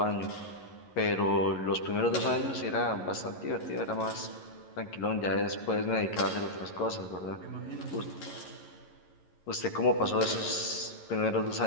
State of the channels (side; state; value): right; late; 11 ms